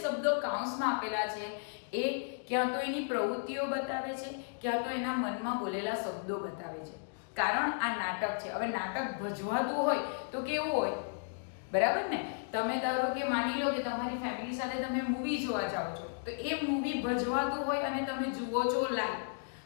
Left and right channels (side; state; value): right; silent; digital silence